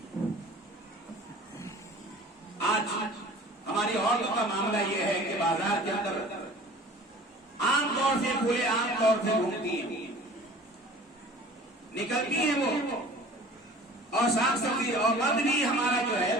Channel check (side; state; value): both; normal; correlation 0.45